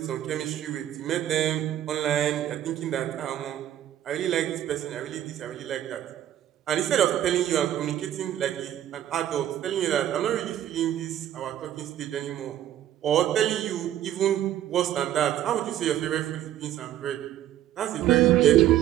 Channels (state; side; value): quieter; left; 11.8 dB